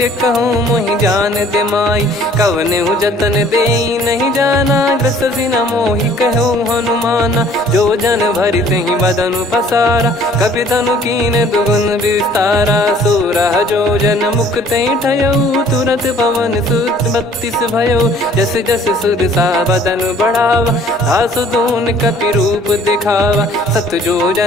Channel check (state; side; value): normal; both; correlation 0.55